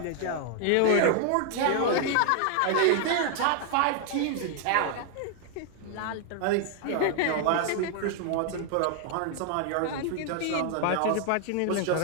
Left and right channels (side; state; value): both; different; correlation 0.00